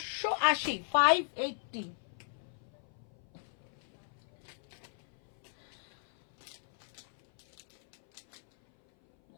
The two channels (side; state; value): right; silent; 54 dB below the other